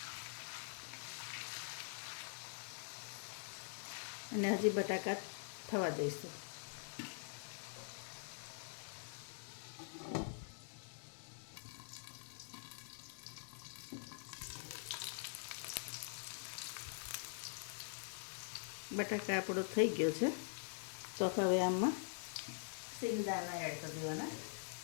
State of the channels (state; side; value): silent; right; digital silence